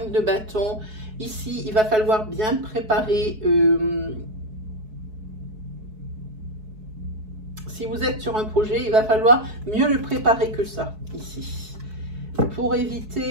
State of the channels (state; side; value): late; left; 4.6 ms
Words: de bâton, ici, il va falloir bien préparer. Si vous êtes sur un projet, il va falloir mieux le préparer que ça, ici, pour